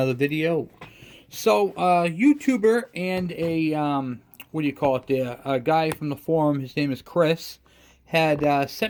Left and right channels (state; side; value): identical; both; correlation 1.00